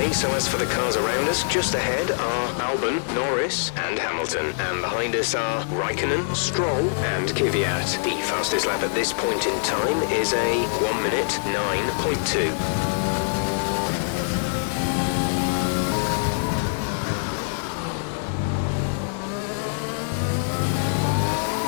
so as for the cars around us, just ahead are Albon, Norris and Hamilton. And behind us are Raikkonen, Stroll and Kvyat. The fastest lap at this point in time is a 1 minute 9.2.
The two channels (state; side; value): silent; right; 62 dB below the other